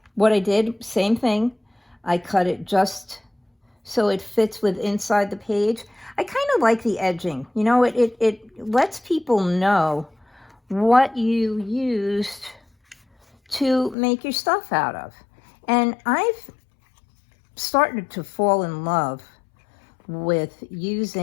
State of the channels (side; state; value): right; drops out; at 14.0 s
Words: what I did, same thing. I cut it just so it fits with inside the page. I kind of like the edging. You know, it lets people know what you used to make your stuff out of. And I've started to fall in love with